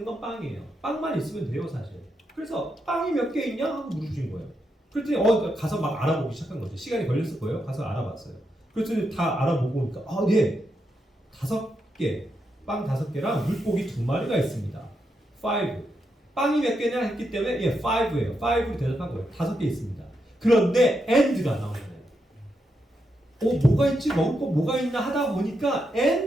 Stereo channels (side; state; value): both; normal; correlation 0.83